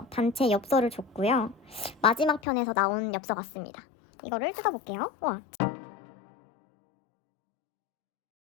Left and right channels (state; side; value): drops out; right; at 2.4 s